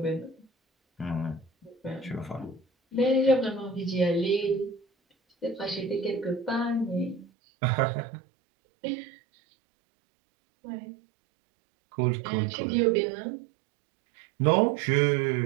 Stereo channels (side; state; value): left; drops out; at 7.2 s